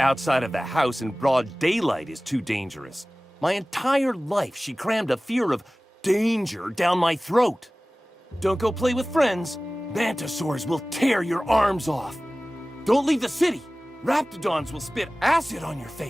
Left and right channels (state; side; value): normal; both; correlation 0.98